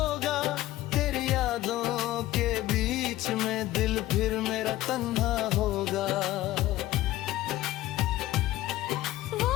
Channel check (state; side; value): quieter; right; 15.7 dB